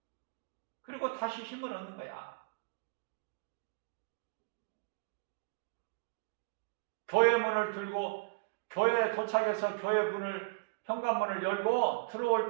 그리고 다시 힘을 얻는 거야. 교회 문을 들고 교회에 도착해서 교회 문을, 현관문을 열고 들어올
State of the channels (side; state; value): left; quieter; 30.0 dB